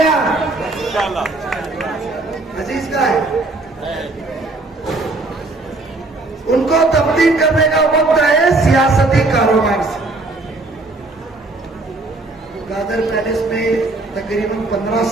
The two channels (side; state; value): left; quieter; 3.1 dB